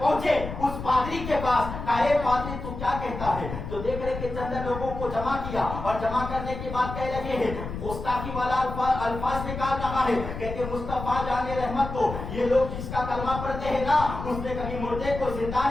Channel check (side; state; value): left; noise; rumble, 8 dB below the sound